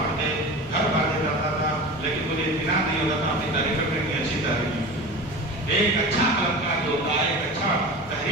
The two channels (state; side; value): normal; both; correlation 0.32